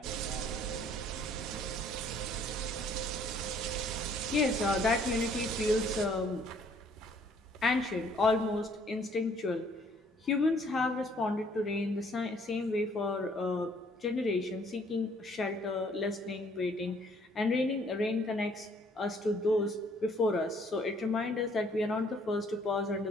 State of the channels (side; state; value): both; normal; correlation 0.61